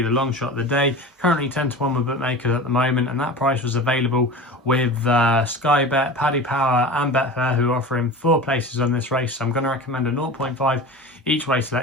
the long shot of the day. Currently 10-1 with bookmakers at the moment, and that price was available with SkyBet, Paddy Power and Betfair, who are offering 4 places on this race. So I'm going to recommend a 0.5 each way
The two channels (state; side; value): normal; both; correlation 0.33